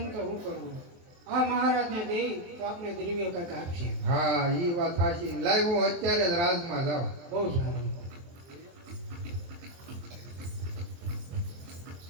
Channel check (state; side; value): late; left; 23 ms